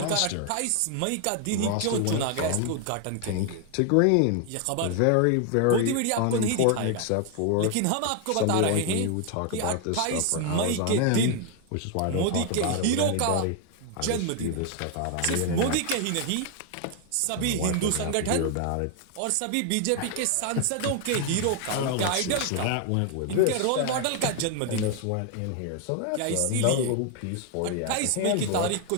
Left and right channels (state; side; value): different; both; correlation 0.00